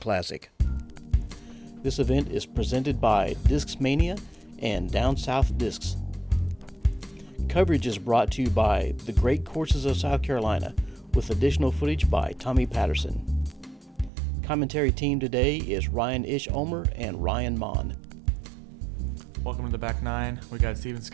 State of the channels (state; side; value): drops out; left; at 14.1 s